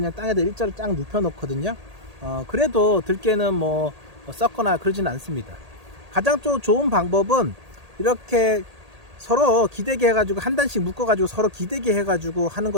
그냥 땅에다 일자로 쫙 눕혀 놓거든요. 그래도 들깨는 뭐 썩거나 그러지는 않습니다. 가장 또 좋은 방법은 이렇게 서로 기대게 해가지고 한 단씩 묶어가지고 서로 기대게 해가지고 하는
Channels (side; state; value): left; late; 1.8 ms